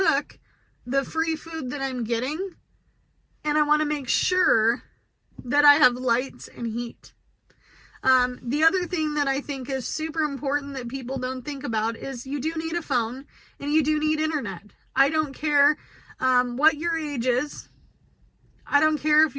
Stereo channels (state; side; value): identical; both; correlation 1.00